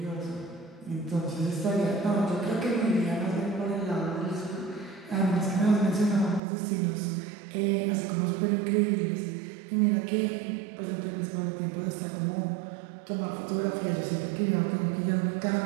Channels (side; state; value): left; drops out; at 6.4 s